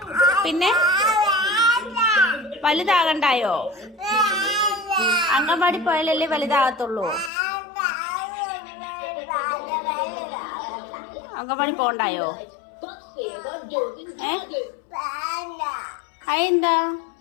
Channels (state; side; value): drops out; right; at 7.3 s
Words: പിന്നെ വലുതാകണ്ടായോ? അംഗൻവാടി പോയാലല്ലേ വലുതാകത്തുള്ളൂ. അംഗൻവാടി പോണ്ടായോ? അതെന്താ?